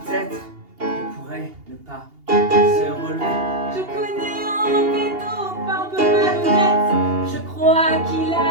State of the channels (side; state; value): left; late; 2.8 ms